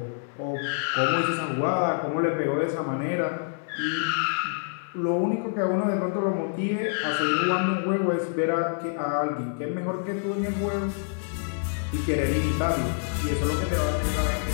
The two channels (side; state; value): right; silent; 60 dB below the other